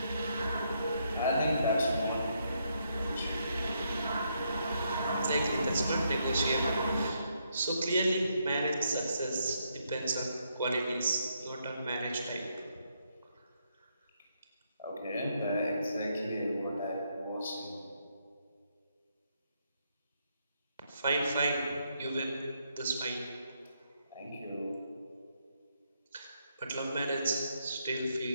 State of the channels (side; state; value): both; inverted; correlation -0.77